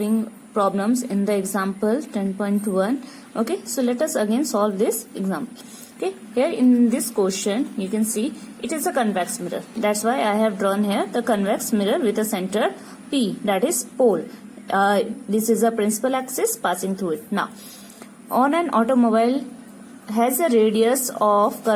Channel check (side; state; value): both; identical; correlation 1.00